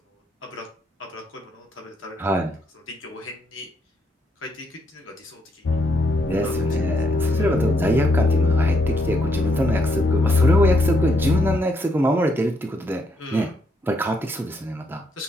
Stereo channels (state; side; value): normal; both; correlation 0.75